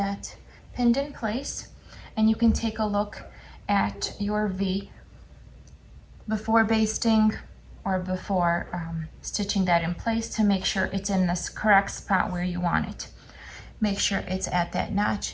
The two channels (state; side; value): identical; both; correlation 1.00